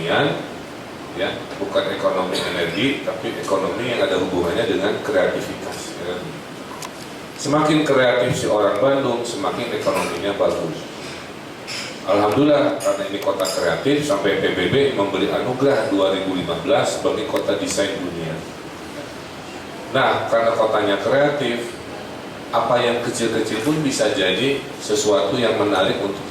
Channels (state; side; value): identical; both; correlation 1.00